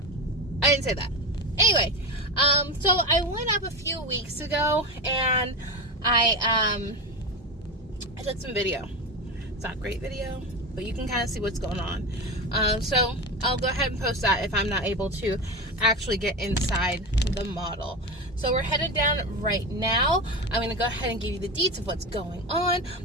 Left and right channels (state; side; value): normal; both; correlation 0.21